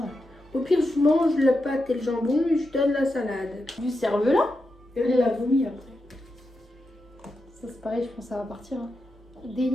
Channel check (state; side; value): normal; both; correlation 0.87